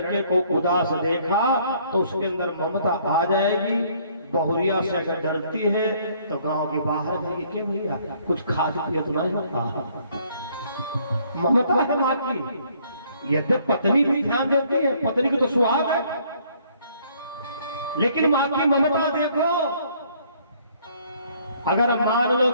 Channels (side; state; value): both; inverted; correlation -0.63